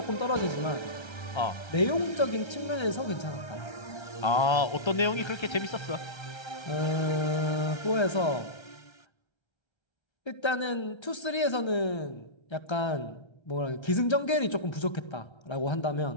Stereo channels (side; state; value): right; late; 1.3 ms